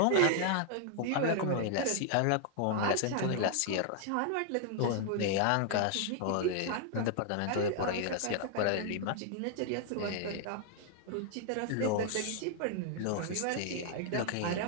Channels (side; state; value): both; different; correlation 0.00